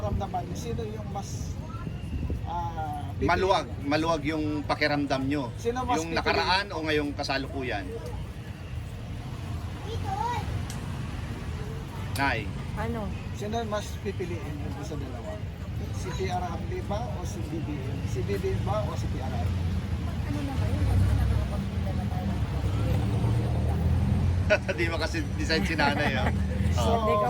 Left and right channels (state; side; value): identical; both; correlation 1.00